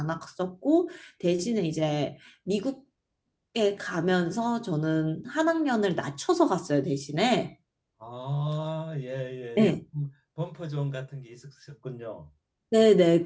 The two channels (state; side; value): identical; both; correlation 1.00